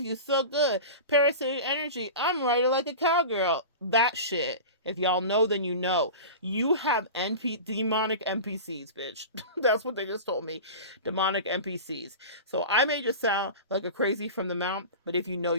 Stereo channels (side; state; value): both; inverted; correlation -0.31